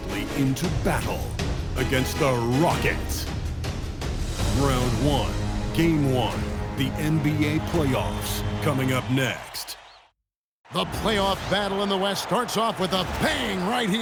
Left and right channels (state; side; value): identical; both; correlation 1.00